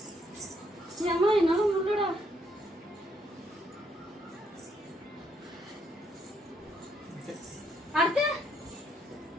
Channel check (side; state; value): both; normal; correlation 0.73